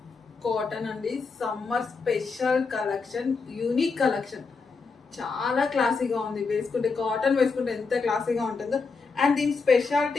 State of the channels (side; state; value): right; quieter; 4.6 dB